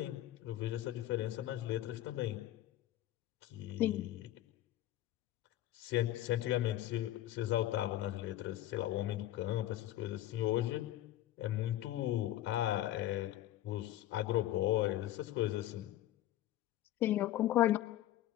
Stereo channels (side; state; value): right; quieter; 13.9 dB